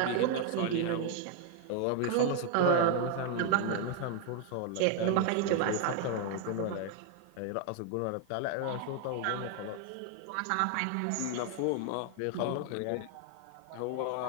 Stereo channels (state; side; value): different; both; correlation 0.00